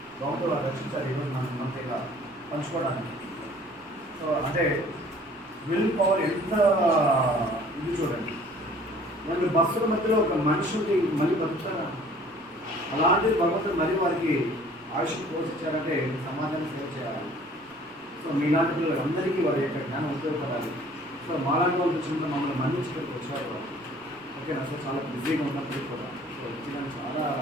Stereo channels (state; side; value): normal; both; correlation 0.53